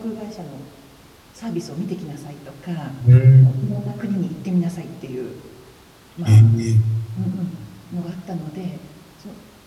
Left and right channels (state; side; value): identical; both; correlation 1.00